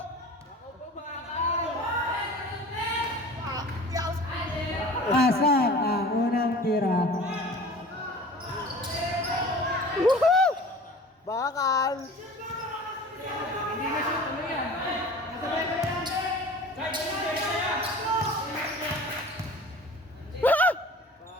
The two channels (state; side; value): normal; both; correlation 0.42